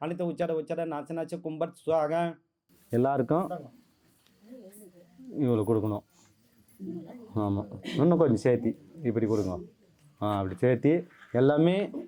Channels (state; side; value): identical; both; correlation 1.00